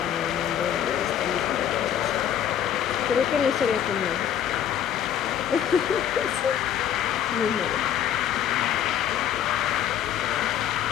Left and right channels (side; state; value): right; quieter; 9.8 dB